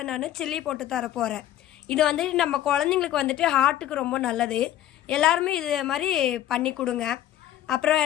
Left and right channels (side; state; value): right; quieter; 12.5 dB